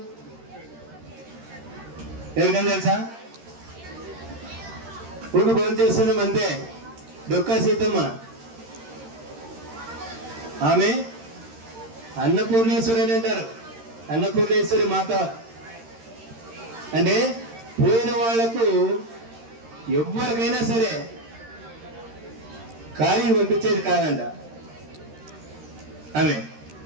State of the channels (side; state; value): left; late; 13 ms